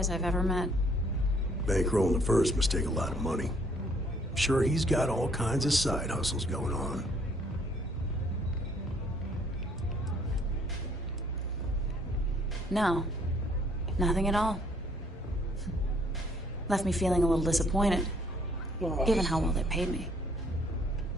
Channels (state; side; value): normal; both; correlation 0.64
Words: I've ever met. Bankrolling the first must take a lot of money. I'm sure he's got all kinds of side hustles going on. No. Nothing at all. Left me feeling a little disappointed, given how well they paid me.